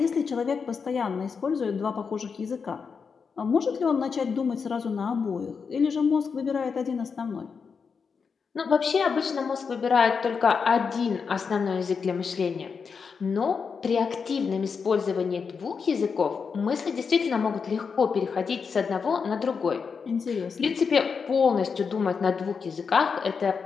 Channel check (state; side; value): quieter; right; 5.7 dB